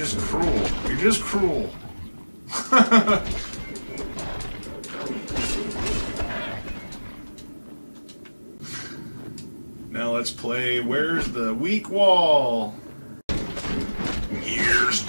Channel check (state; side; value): inverted; both; correlation -1.00